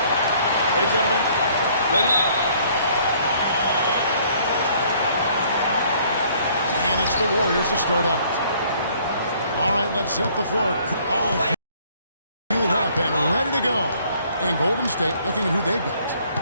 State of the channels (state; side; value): inverted; both; correlation -0.61